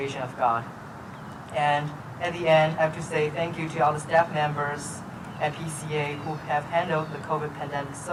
of God. And at the end, I have to say thank you to all the staff members at PCA who have handled the COVID pandemic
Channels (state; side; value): identical; both; correlation 1.00